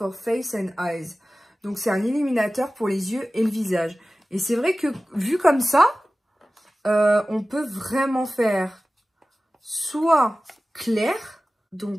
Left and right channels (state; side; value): normal; both; correlation 0.96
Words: Face and Eyes. Donc, c'est un illuminateur pour les yeux et le visage. Et c'est vrai que, vu comme ça, on peut vraiment faire soit clair.